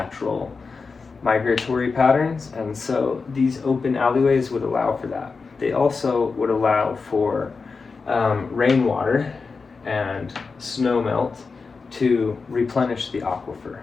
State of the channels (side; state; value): right; quieter; 4.6 dB